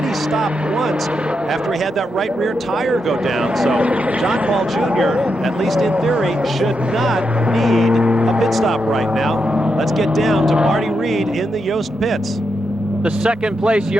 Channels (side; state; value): both; normal; correlation 0.84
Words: stopped once after he had that right rear tire go down. So John Paul Jr., at least in theory, should not need a pit stop right now. Let's get down to Marty Reed in the Yost pits. The second place